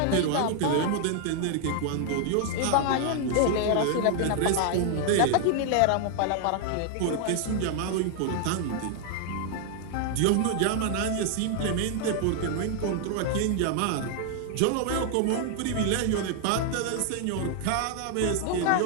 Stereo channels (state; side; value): different; both; correlation 0.00